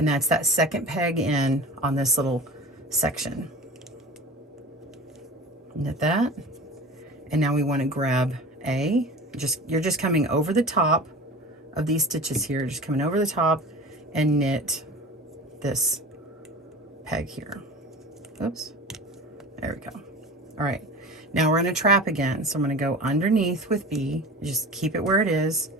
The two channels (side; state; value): both; normal; correlation 0.35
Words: that's that second peg in on this little section. Knit that. And now we want to grab A. You're just coming over the top of these stitches here, just coming over the top and knit this peg here. Oops. There we go. All right. Now we're going to trap again. So I'm going to go underneath with B. Just keep it where it is.